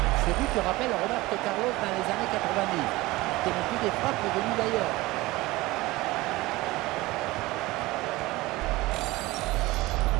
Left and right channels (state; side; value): quieter; left; 19.9 dB